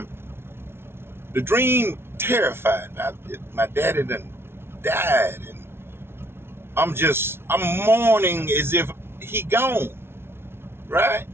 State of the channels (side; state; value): left; late; 0.12 ms